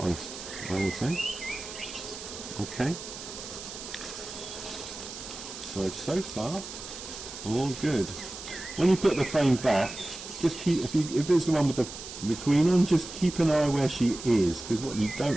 honest, I would say. Okay. So far, all good. When you put the frame back, just keep, if it's the one with the the queen on, just keep an eye where she is, because what you don't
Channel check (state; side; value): noise; right; hiss, 11 dB below the sound